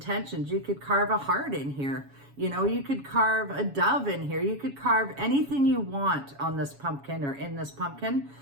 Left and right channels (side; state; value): left; late; 7.2 ms